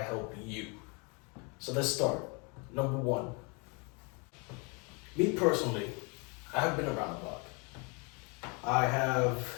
help you. So let's start. Number one, me personally, I have been around the block. I have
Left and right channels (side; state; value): right; quieter; 32.2 dB